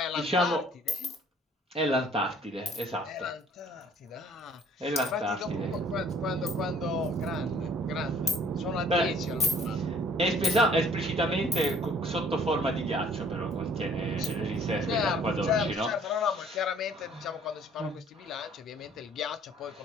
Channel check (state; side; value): normal; both; correlation 0.56